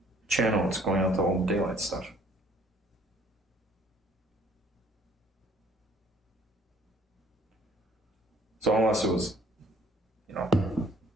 channel is going out to all the daylight stuff. So unless it was,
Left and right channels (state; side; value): normal; both; correlation 0.59